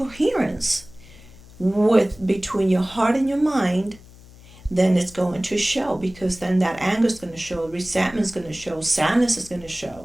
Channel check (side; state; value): left; noise; hum, 22 dB below the sound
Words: with between your heart and your mind, then it's going to show, because then that anger is going to show, resentment is going to show, sadness is going to